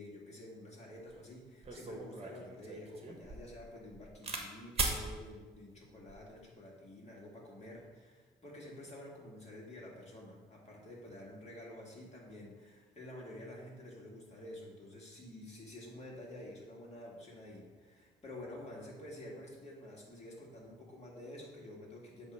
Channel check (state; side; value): normal; both; correlation 0.37